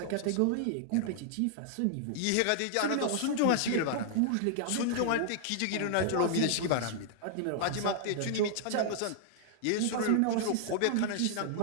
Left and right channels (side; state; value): both; different; correlation -0.01